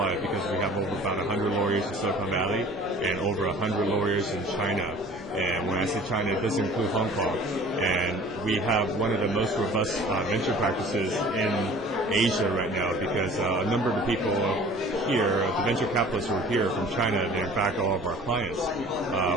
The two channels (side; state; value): both; normal; correlation 0.47